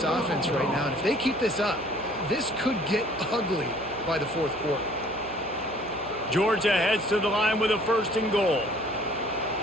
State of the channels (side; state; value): right; noise; hum, 17 dB below the sound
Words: offense right now, and if they keep this up, this could get ugly by the fourth quarter. Georgia heads to the line with a 1st and goal.